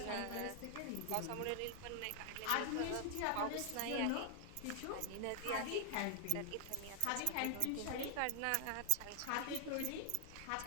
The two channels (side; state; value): both; different; correlation 0.00